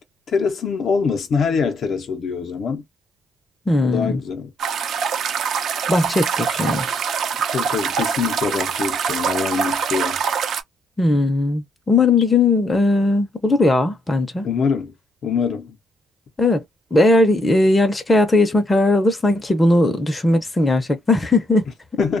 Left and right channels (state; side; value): normal; both; correlation 0.73